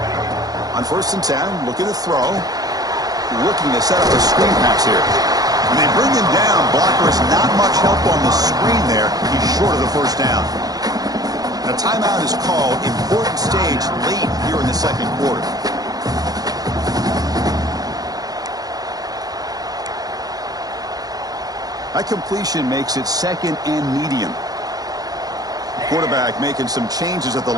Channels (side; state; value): left; late; 0.18 ms